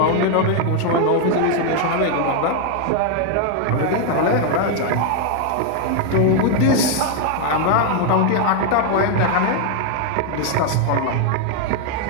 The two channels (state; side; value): different; both; correlation 0.00